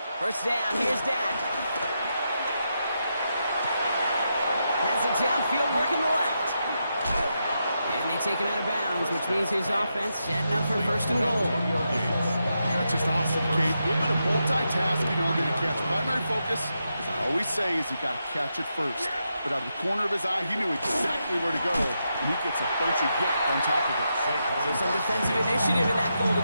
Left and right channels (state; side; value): inverted; both; correlation -0.85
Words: First down, here's Dak. Has it downfield, working the left. And they take him out of bounds, which means his offense setting up for 1st and goal. That's just awesome, Kate. A little bit of multitasking on that catch. Primary focus, as I always say, is you got to catch it first. But out of the corner of his eye, he knew exactly where to go, and he gets a bunch of yak on top of it. So some defensive initiative in that goal to